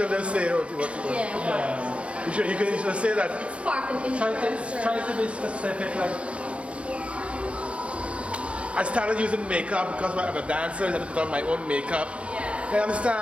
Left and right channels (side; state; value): left; late; 0.061 ms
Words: don't say what you want. Yeah. You can just say that. It's spark and interest. Try to be specific, like I started using makeup because I'm a dancer. I had to put on my own makeup. Yeah. You